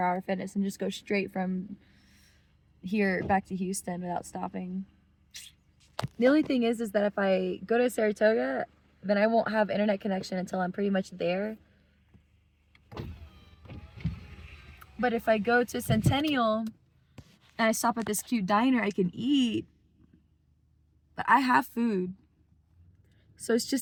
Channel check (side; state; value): both; identical; correlation 1.00